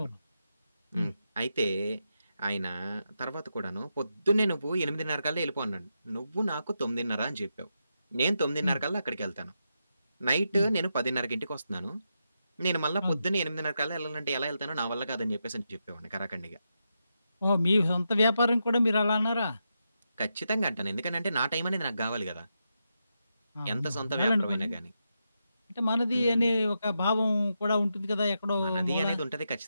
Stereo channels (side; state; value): both; inverted; correlation -0.85